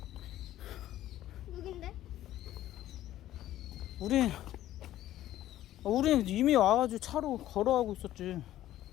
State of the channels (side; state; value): right; quieter; 13.5 dB